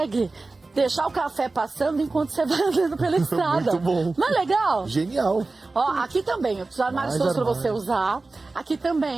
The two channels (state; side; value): quieter; left; 3.5 dB